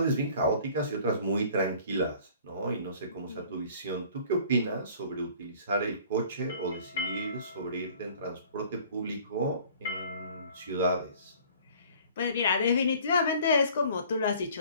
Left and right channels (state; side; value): inverted; both; correlation -0.51